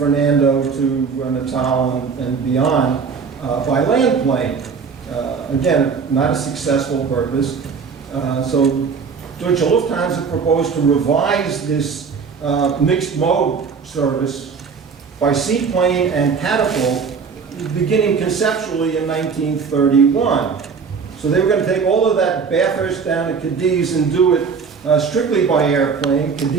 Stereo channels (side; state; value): left; quieter; 5.7 dB